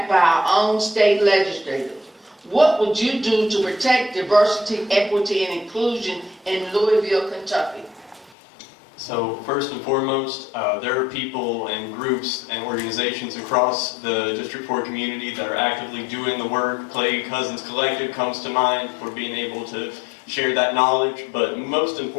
by our own state legislators. What would you do to protect diversity, equity, and inclusion in Louisville, Kentucky? So first and foremost, there are people and groups and organizations across the District 4 community that are actively doing the work. Clay Cousins Collective comes to mind for being able to share that knowledge, but most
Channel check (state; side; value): drops out; right; at 8.3 s